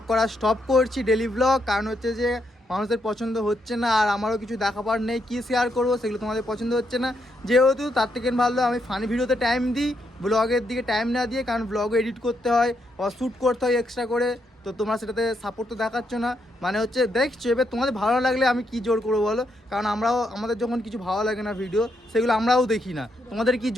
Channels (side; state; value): both; normal; correlation 0.79